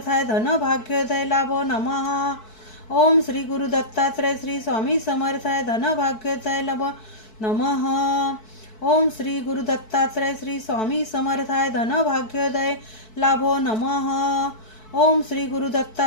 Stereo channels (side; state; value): right; late; 4.6 ms